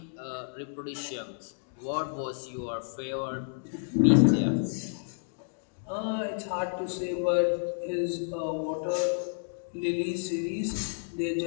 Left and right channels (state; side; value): silent; right; digital silence